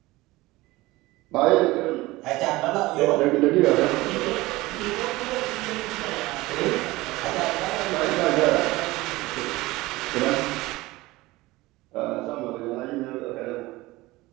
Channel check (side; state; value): left; quieter; 19.8 dB